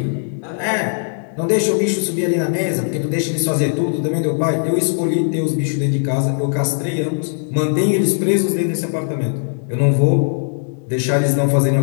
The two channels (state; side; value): silent; right; 67 dB below the other